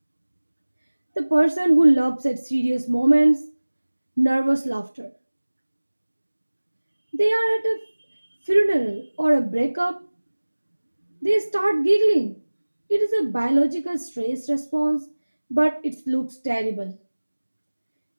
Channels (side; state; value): both; inverted; correlation -1.00